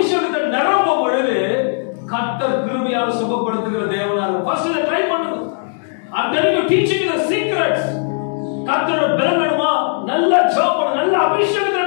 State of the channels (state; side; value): silent; right; digital silence